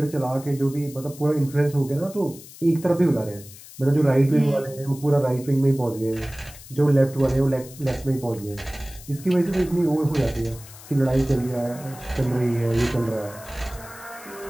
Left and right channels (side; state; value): left; noise; hiss, 18 dB below the sound